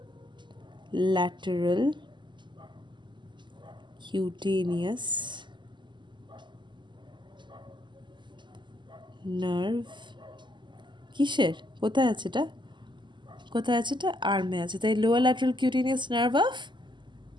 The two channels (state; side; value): late; left; 0.22 ms